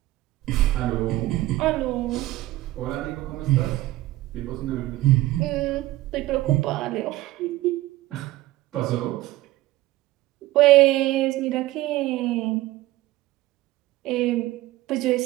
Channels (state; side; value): quieter; left; 17.2 dB